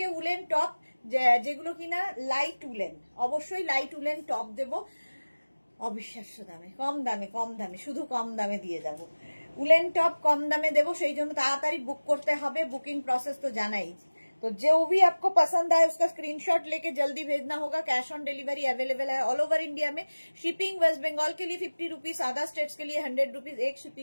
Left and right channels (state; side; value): inverted; both; correlation -1.00